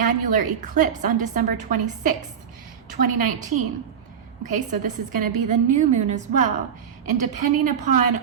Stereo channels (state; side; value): quieter; left; 7.9 dB